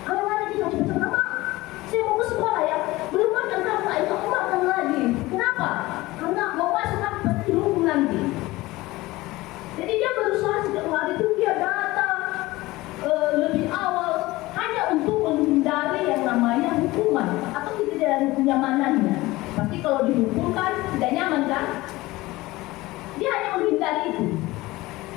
Kalau hari kita cepat nama saya mau ke sekolah ya, belum makan kamu, ayo aku makan lagi. Kenapa? Karena mau masuk kan pasti hukum nanti. Jadi dia berusaha setiap hari itu dia datang lebih awal hanya untuk menghindari yang namanya hukuman atau tidak dari kenyamanannya. Pasti kalau dihukum kan tidak nyaman kan? Dia hanya menghindari itu.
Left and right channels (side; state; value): right; quieter; 19.4 dB